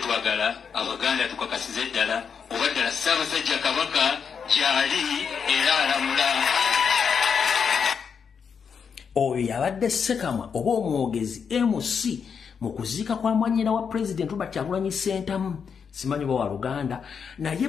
Abaganda tukakasize ddala oba ddala Ssaabasajja Kabaka gyali era alamula. Oyo yabadde Ssekamwa oba omwogezi MC mu kuziika kwa mwanyina wa president Robert Kyagulanyi Ssentamu. Simanyi wa Luganda naye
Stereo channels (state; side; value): quieter; right; 6.6 dB